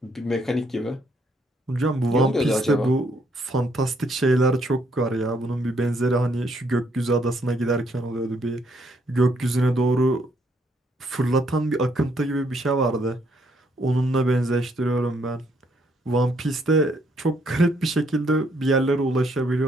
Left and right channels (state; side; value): normal; both; correlation 0.71